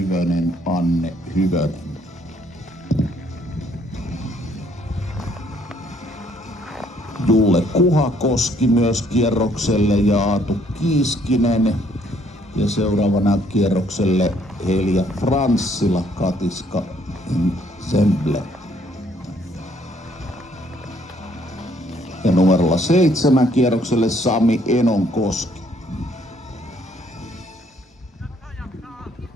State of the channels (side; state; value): both; normal; correlation 0.65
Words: Anne Hyvönen. Julle Kuhakoski myös kierrokselle ja Aatu Kiiskinen. Ja seuraavana kierrokselle Helja Franssila, Katiska Semble. Ja numerolla 7 kierrokselle Sami Enonkoski.